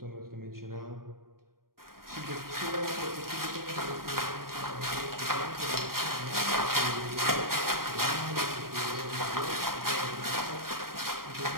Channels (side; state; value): left; late; 0.92 ms